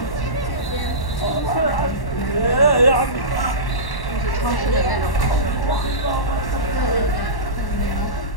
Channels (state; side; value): late; right; 1.1 ms